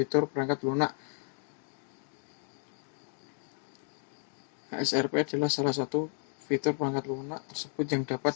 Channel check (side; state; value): right; silent; digital silence